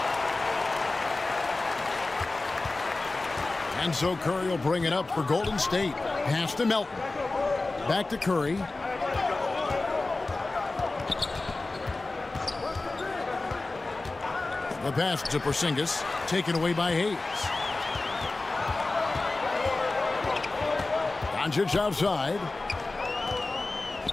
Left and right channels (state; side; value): quieter; right; 3.3 dB